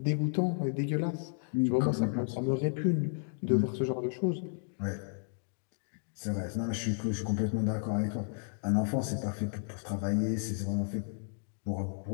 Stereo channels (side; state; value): right; silent; digital silence